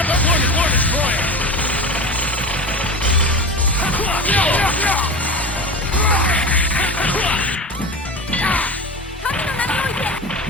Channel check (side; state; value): both; normal; correlation 0.29